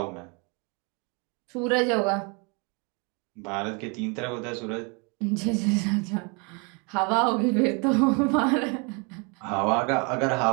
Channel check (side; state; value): left; quieter; 32.8 dB